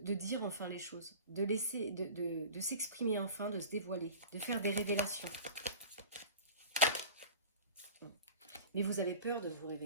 dire enfin les choses. De laisser, de s'exprimer enfin, de se dévoiler. De faire des révélations. Mais vous avez peur de vous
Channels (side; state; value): both; inverted; correlation -0.37